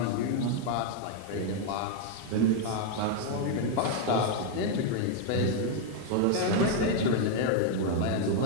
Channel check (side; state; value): both; different; correlation 0.00